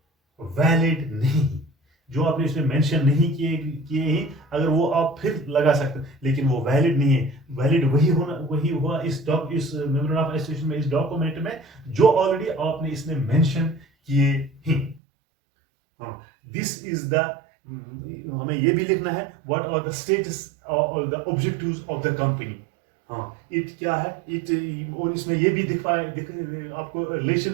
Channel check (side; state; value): left; drops out; at 15.0 s